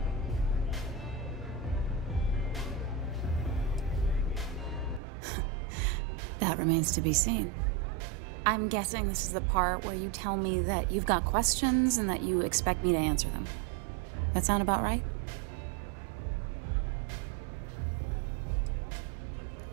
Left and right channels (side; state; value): left; drops out; at 5.0 s